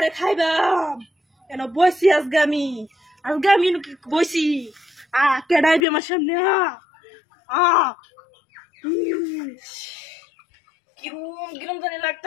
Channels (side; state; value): right; drops out; at 5.9 s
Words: খাইবাম কেন বইছি আজকে আমি বইছি কেডাইবি আমার সামনে কিরম কিরম জানি